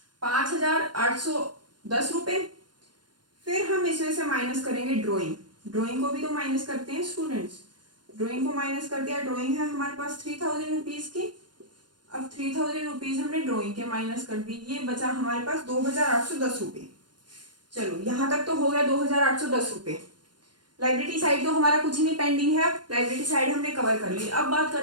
5,810 रुपए। फिर हम इसमें से माइनस करेंगे ड्राइंग, ड्राइंग को भी तो माइनस करते हैं स्टूडेंट्स, ड्राइंग को माइनस कर दिया। ड्राइंग है हमारे पास 3,000 रुपीज की। अब 3,000 रुपीज हमने ड्राइंग के माइनस कर दी, ये बचा हमारे पास 2,810 रुपए। चलो यहां तक तो हो गया 2,810 रुपए। लाइब्रेरी साइड तो हमारा कुछ नहीं पेंडिंग है, लाइब्रेरी साइड हमने कवर कर ली। अब बात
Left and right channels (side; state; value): left; late; 0.71 ms